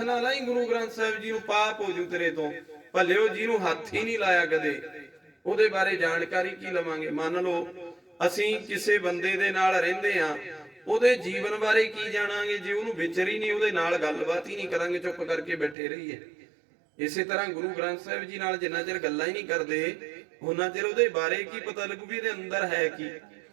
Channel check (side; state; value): left; drops out; at 15.8 s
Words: ਨਾਲ ਲਾਈ ਗੁਰੂ ਗ੍ਰੰਥ ਸਾਹਿਬ ਜੀ ਨੂੰ, ਪਾਪ ਹੋ ਜੂ ਤੇਰੇ ਤੋਂ। ਭਲਿਓ ਜਿਹਨੂੰ ਹੱਥ ਹੀ ਨਹੀਂ ਲਾਇਆ ਕਦੇ, ਉਹਦੇ ਬਾਰੇ ਜਾਣਕਾਰੀ ਕੀ ਲਵਾਂਗੇ? ਮੰਨ ਲਓ ਅਸੀਂ ਕਿਸੇ ਬੰਦੇ ਦੇ ਨਾਲ ਰਹਿੰਦੇ ਆ, ਉਹਦੇ ਜੀਵਨ ਬਾਰੇ ਕੀ ਜਾਣਾਂਗੇ ਜੇ ਉਹਨੂੰ ਵਿਚਰ ਹੀ ਨਹੀਂ, ਉਹਦੇ ਨਾਲ ਗੱਲਬਾਤ ਹੀ ਨਹੀਂ ਕਰਾਂਗੇ, ਚੁੱਪ ਕਰਕੇ ਬੈਠੇ ਰਹੀਏ। ਇਸੇ ਤਰ੍ਹਾਂ ਗੁਰੂ ਗ੍ਰੰਥ ਸਾਹਿਬ ਜੀ ਨਾਲ ਜਿੰਨਾ ਚਿਰ ਗੱਲਾਂ ਹੀ ਨਹੀਂ ਕਰਦੇ, ਉਹਨਾਂ ਚਿਰ ਉਹਦੇ ਬਾਰੇ ਕੀ ਪਤਾ ਲੱਗੂ ਵੀ ਇਹਦੇ ਅੰਦਰ ਹੈ ਕੀ।